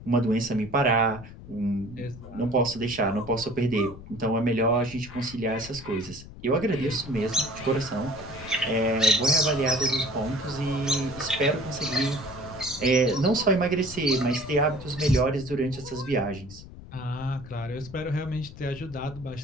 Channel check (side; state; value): left; noise; rumble, 15 dB below the sound